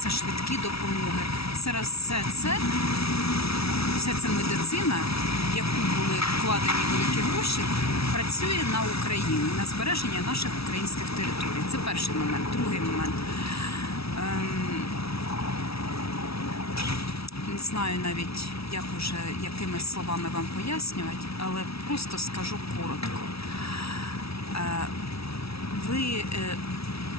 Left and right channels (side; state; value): right; late; 0.76 ms